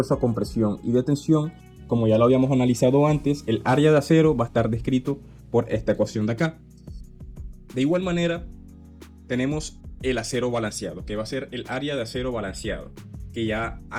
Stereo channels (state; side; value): identical; both; correlation 1.00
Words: a compresión y de tensión, como ya lo habíamos analizado antes, el área de acero va a estar descrito por esta ecuación de acá. De igual manera, tenemos el acero balanceado, que va a ser el área de acero balanceado, que ya